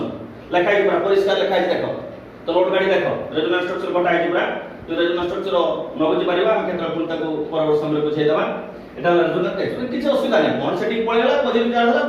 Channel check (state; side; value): identical; both; correlation 1.00